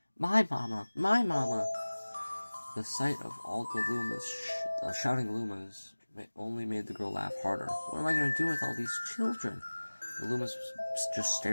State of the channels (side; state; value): both; inverted; correlation -1.00